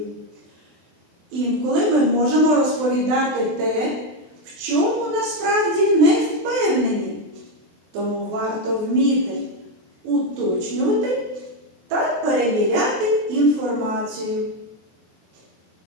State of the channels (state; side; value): late; left; 23 ms